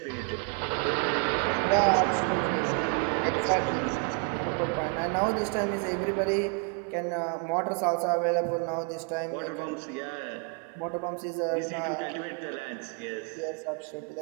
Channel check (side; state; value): left; quieter; 32.9 dB